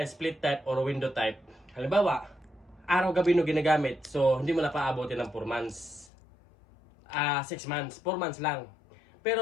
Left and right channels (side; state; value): right; drops out; at 6.1 s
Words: split type or window type, halimbawa, araw-gabi no ginagamit, so hindi mo na paabotin ng 4 months. 6 months, 4 months lang.